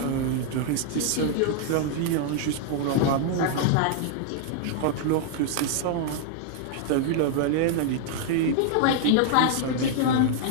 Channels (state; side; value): different; both; correlation 0.00